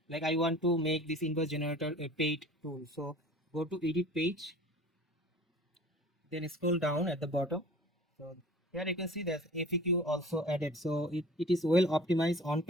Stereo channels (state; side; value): normal; both; correlation 0.44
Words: Like I want to make this invoice generator a paid tool, so go to edit page, then scroll down at the bottom. So here you can see there's FAQ also added. So it is well optimized, on